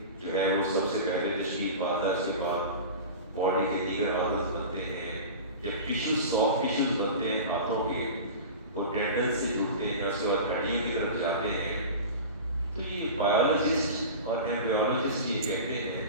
جو ہے وہ سب سے پہلے تشکیل پاتا ہے، اس کے بعد باڈی کے دیگر آرگنز بنتے ہیں، جب ٹیشوز سافٹ ٹیشوز بنتے ہیں ہاتھوں کے، وہ ٹینڈن سے جڑتے ہیں، اس کے بعد ہڈیوں کی طرف جاتے ہیں۔ تو یہ بایولوجسٹ اور ایمبریولوجسٹ یہ کہتے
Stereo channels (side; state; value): both; inverted; correlation -0.32